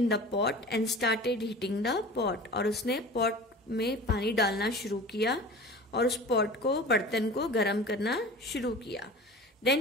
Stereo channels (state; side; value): normal; both; correlation 0.38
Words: the pot and started heating the pot, और उसने पॉट में पानी डालना शुरू किया और उस पॉट को, बर्तन को गर्म करना शुरू किया.